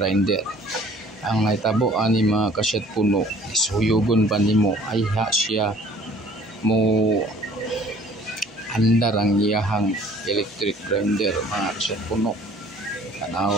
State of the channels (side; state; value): both; normal; correlation 0.53